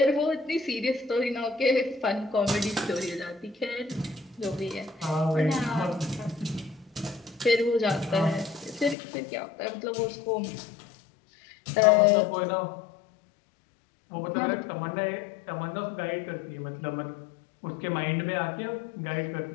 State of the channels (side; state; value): right; drops out; at 9.0 s